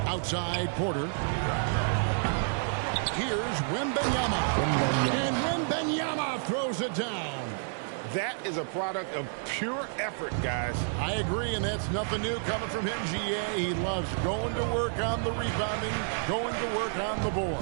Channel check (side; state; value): left; silent; 58 dB below the other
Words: Outside Porter. Here's Wembanyama. And Wembanyama throws it down. That is a product of pure effort, guys. I agree, and that's nothing new coming from him, GA. He loves going to work on the rebounding, going to work on the board.